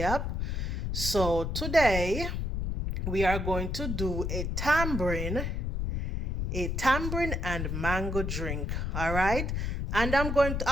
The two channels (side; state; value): left; noise; rumble, 1 dB below the sound